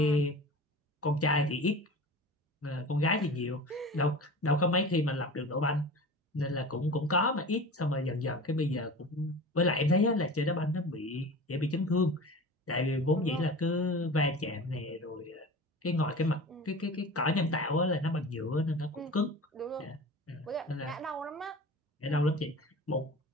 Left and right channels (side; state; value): both; normal; correlation 0.35